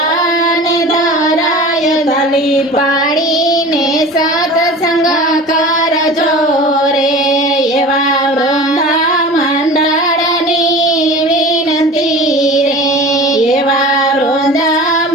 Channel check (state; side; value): normal; both; correlation 0.37